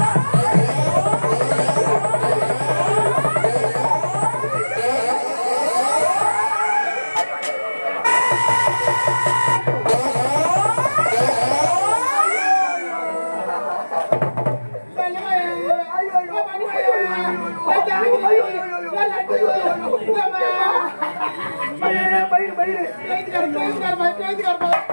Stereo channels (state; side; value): inverted; both; correlation -1.00